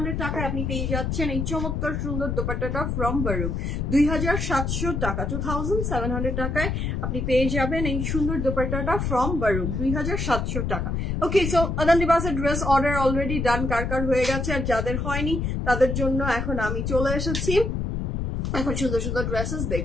টাকায় আপনি পেয়ে যাচ্ছেন এই চমৎকার সুন্দর দোপাট্টাটা from Baru 2700 টাকা 2700 টাকায় আপনি পেয়ে যাবেন এই সুন্দর দোপাট্টাটা from Baru 2700 টাকা ওকে সো আদান লিবাসের ড্রেস অর্ডার অলরেডি ডান কার হয়ে গেছে আর যাদের হয়নি তাদের জন্য এখন আমি চলে এসেছি এখন সুন্দর ড্রেসেস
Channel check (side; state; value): left; noise; rumble, 1 dB below the sound